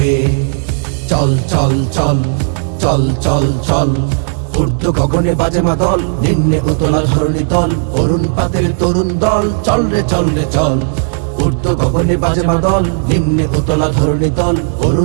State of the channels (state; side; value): silent; left; digital silence